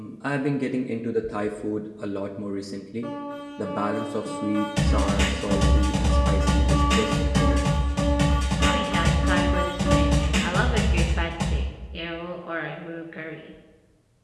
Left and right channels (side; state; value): both; identical; correlation 1.00